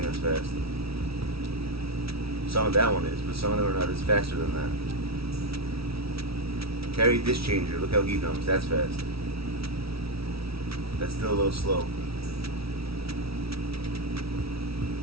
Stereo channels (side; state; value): left; late; 0.76 ms